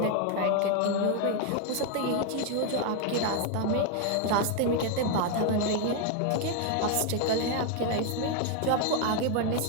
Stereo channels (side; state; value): both; different; correlation 0.01